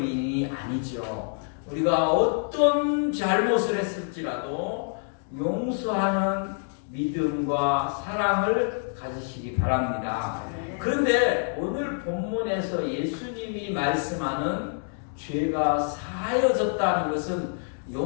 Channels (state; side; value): silent; right; 60 dB below the other